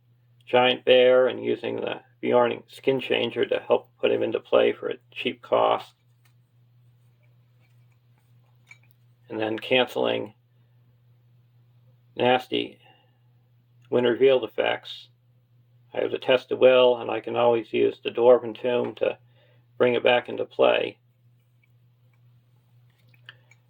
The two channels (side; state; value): both; identical; correlation 1.00